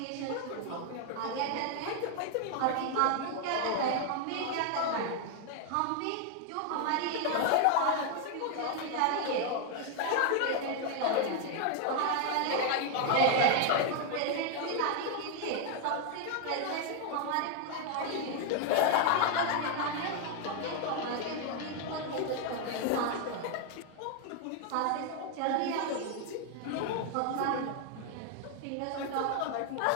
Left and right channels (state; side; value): different; both; correlation 0.00